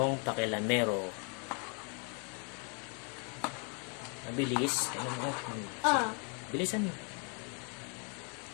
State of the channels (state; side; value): quieter; right; 37.1 dB